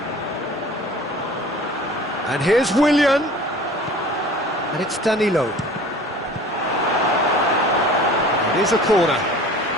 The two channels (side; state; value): both; normal; correlation 0.44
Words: And here's Willian. And it's Danilo. It is a corner.